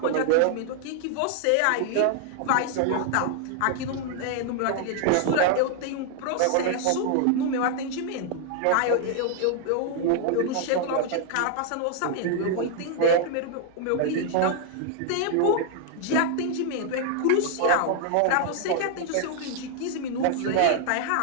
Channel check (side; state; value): both; different; correlation 0.00